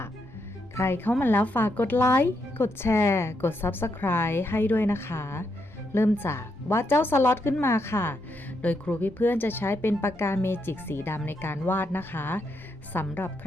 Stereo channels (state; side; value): normal; both; correlation 0.80